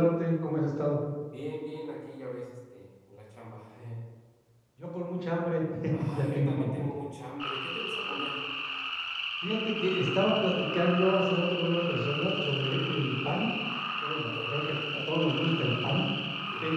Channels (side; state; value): both; identical; correlation 1.00